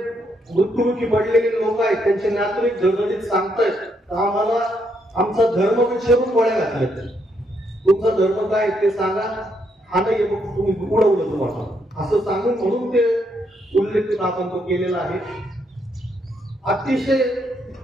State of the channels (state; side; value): normal; both; correlation 0.76